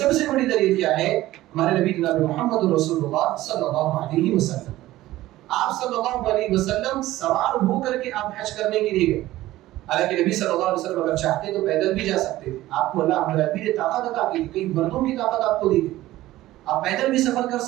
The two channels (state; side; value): quieter; left; 16.0 dB